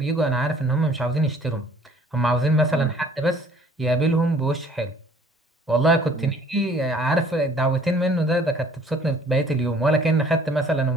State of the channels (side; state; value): both; normal; correlation 0.56